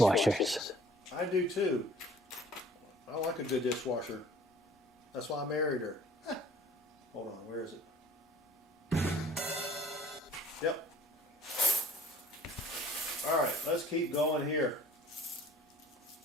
I do too. I like a good dishwasher. That's why I married her. Hold on, where is it? Yep. All right, let's keep going here.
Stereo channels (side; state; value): both; normal; correlation 0.52